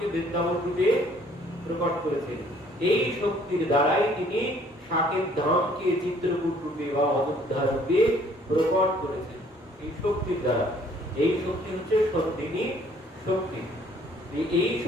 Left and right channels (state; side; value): normal; both; correlation 0.60